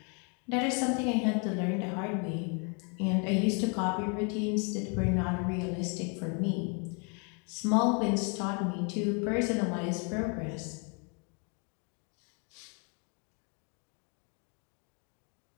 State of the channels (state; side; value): quieter; right; 36.2 dB